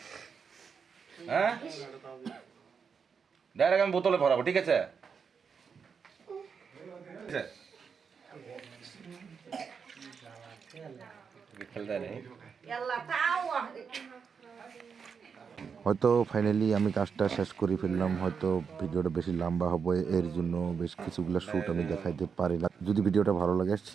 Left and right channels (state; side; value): quieter; left; 6.2 dB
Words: হ্যাঁ ডাইরেক্ট আমি বোতলে ভরাবো, ঠিক আছে? খেলতে নেই। হয়তো ফাইনালি আমি কাজটা শেষ করে ফেললাম। হয়তো ভিডিওটা বেশি লম্বা হবে, এর জন্য বেশ কিছুগুলো শ্যুট আমি দেখাইতে পারি না। যদি ভিডিওটা ভালো লাগে